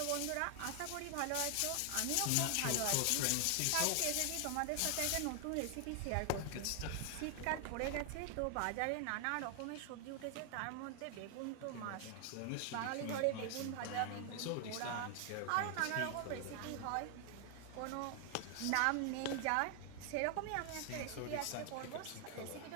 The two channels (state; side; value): different; both; correlation 0.00